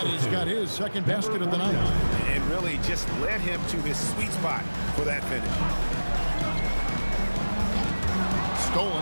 got his second basket of the night. And really just led him to his sweet spot for that finish.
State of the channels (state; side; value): inverted; both; correlation -1.00